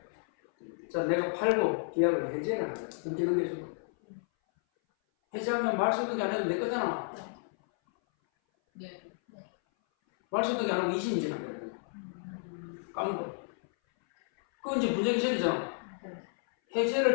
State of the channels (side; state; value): right; silent; 57 dB below the other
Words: 자 내가 팔고 계약을 해제를 하는 거야. 등기등기주고 해제하면 말소등기 안 해도 내 거잖아. 네. 말소등기 안 하고 20년 지난 거야. 깡고. 그건 이제 부정기설이잖아. 해제를